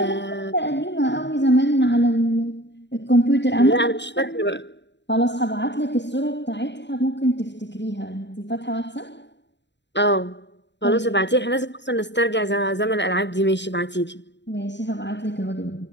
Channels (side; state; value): right; late; 0.52 ms